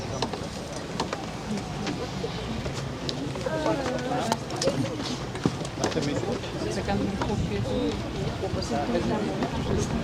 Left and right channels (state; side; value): identical; both; correlation 1.00